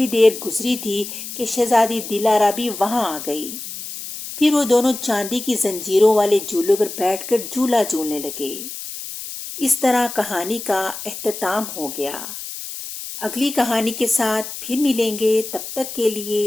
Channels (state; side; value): noise; left; hiss, 9 dB below the sound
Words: دیر گزری تھی کہ شہزادی دلارا بھی وہاں آ گئی۔ پھر وہ دونوں چاندی کی زنجیروں والے جھولے پر بیٹھ کر جھولا جھولنے لگے۔ اس طرح کہانی کا اختتام ہو گیا۔ اگلی کہانی کے ساتھ پھر ملیں گے، تب تک کے